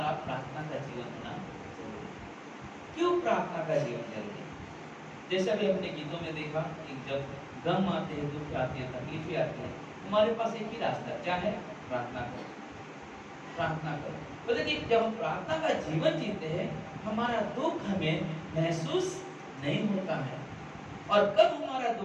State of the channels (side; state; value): both; identical; correlation 1.00